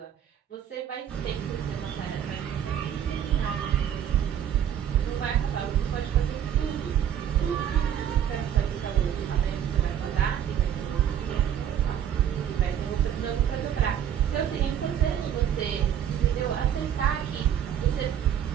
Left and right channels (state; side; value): quieter; left; 9.7 dB